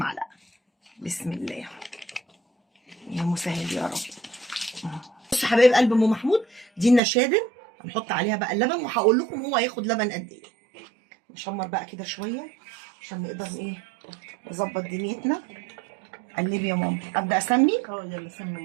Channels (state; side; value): drops out; left; at 7.0 s